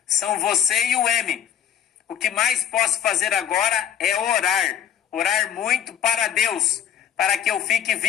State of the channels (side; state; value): right; quieter; 9.4 dB